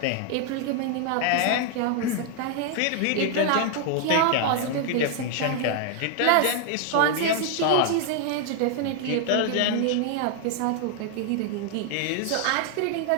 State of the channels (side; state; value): both; different; correlation 0.00